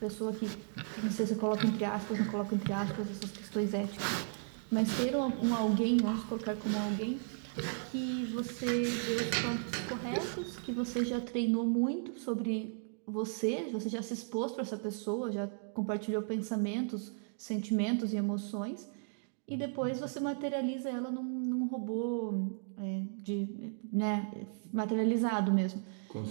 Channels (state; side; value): silent; left; digital silence